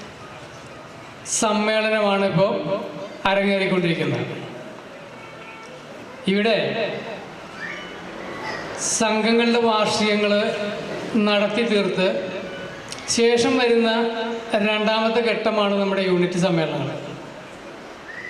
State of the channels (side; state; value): both; identical; correlation 1.00